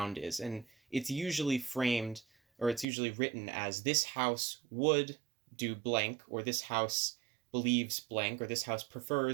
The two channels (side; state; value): left; drops out; at 2.9 s